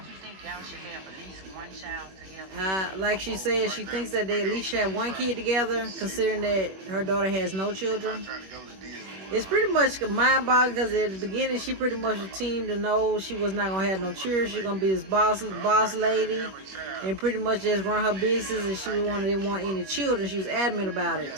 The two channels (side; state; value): left; late; 21 ms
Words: Like she said, she thinks that they at least should have one kid together, considering that her daughter has no children. It's pretty much mind-boggling because at the beginning she pretty much teamed to know she was not gonna have no children. She's gonna be this boss lady and pretty much just run her business, and she didn't want any children. She was adamant about